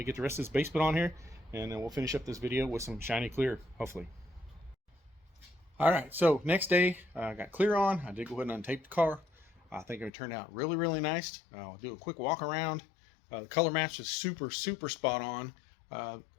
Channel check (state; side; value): drops out; right; at 10.1 s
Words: get the rest of this base put on here, and then we'll finish up this video with some shiny clear, hopefully. All right, so next day I got clear on. I did go ahead and untape the car. I think it turned out really, really nice. I'll do a quick walk around. The color match is super, super spot on.